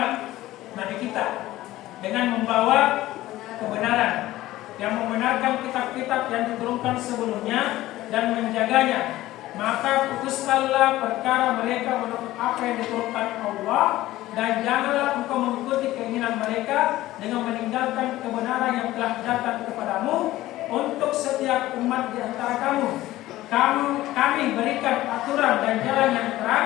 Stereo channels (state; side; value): quieter; right; 16.0 dB